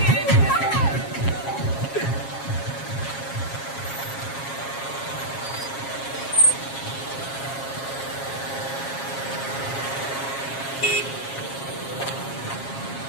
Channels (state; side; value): late; right; 7.4 ms